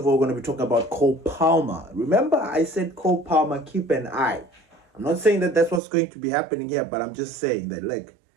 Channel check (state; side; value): drops out; left; at 5.8 s